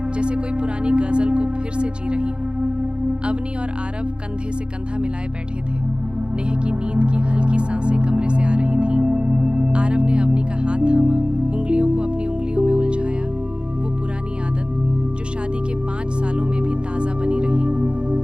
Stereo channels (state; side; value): late; left; 0.054 ms